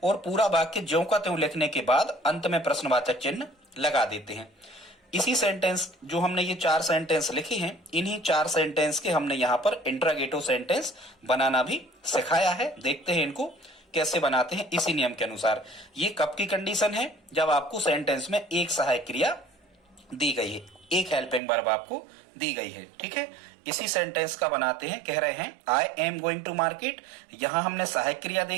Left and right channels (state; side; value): drops out; left; at 21.4 s